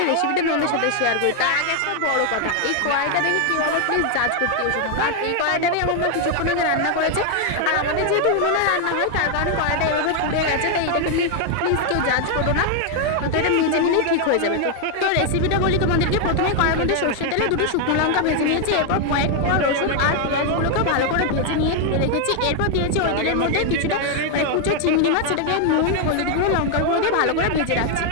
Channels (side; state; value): both; different; correlation 0.00